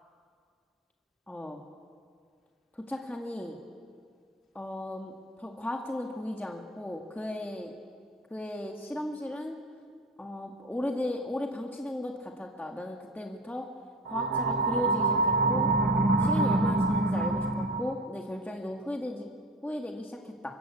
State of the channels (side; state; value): both; normal; correlation 0.34